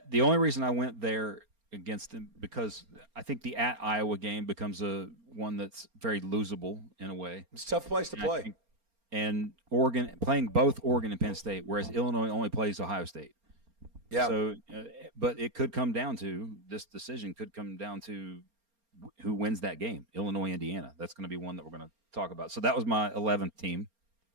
the only reason I went there against them because I think the at Iowa game becomes one that's very losable in a way. It's a tough place to play. And Oregon playing both Oregon and Penn State, whereas Illinois only plays Ohio State. Yeah. So, but it could come down to this decision could come down to who wins that game, Illinois, Indiana. That's going to be one that we're going to talk about. So that was my 11th team.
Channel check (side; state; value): left; late; 4.3 ms